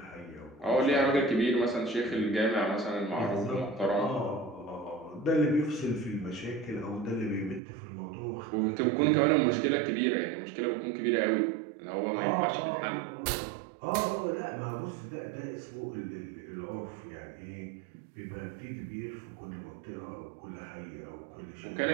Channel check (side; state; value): left; drops out; at 7.6 s